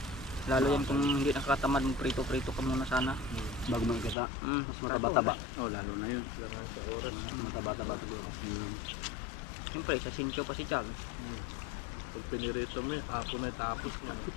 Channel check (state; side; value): drops out; right; at 4.2 s